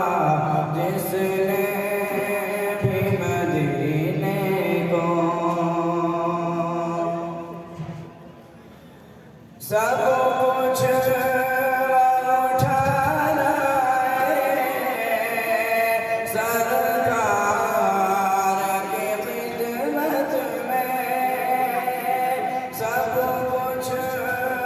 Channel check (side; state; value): both; identical; correlation 1.00